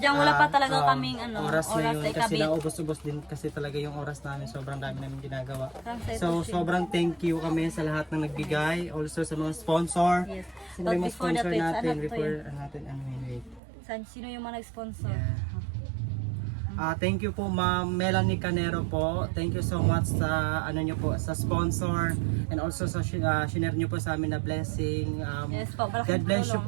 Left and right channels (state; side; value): drops out; left; at 13.6 s